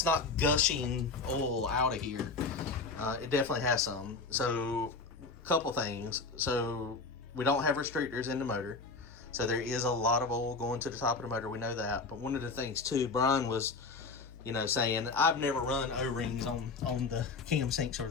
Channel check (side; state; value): right; quieter; 4.1 dB